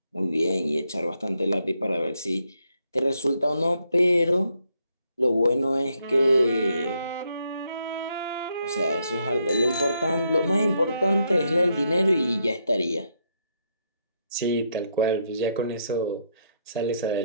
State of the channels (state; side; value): inverted; both; correlation -0.77